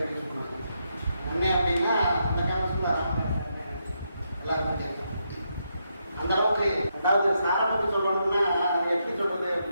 யூஸ் பண்ணுவாங்க. அண்ணே அப்படின்னா அந்த காலத்தில் எல்லாருக்கும் தெரியும். அந்த அளவுக்கு அதாவது சாரை பற்றி சொல்லணும்னா எப்படி சொல்றது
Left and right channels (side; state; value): both; inverted; correlation -0.81